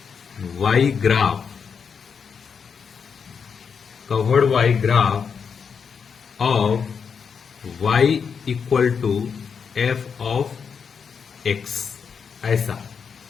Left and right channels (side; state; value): right; quieter; 6.3 dB